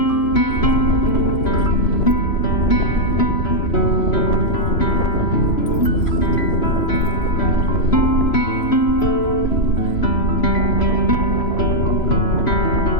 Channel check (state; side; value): late; right; 3.0 ms